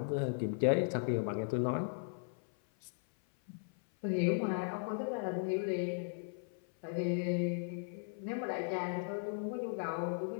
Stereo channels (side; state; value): right; silent; 53 dB below the other